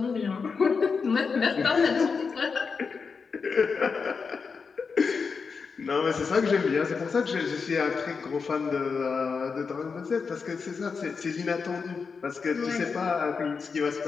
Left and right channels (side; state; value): right; quieter; 5.2 dB